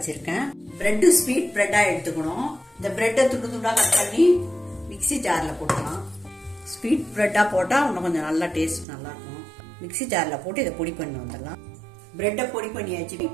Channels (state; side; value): drops out; left; at 8.8 s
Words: பிரெட் ஸ்வீட் பிரெட்டா எடுத்துக்கணும். இந்த பிரெட்டை துண்டு துண்டா கட் பண்ணி மிக்ஸி ஜார்ல போட்டுக்கலாம். ஸ்வீட் பிரெட்டா போட்டா இன்னும் கொஞ்சம் நல்லா டேஸ்ட் நல்லா இருக்கும். மிக்ஸி ஜார்ல போட்டு இதை பொடி பண்ணி வந்துடலாம். பிரெட்டை பொடி பண்ணியாச்சு.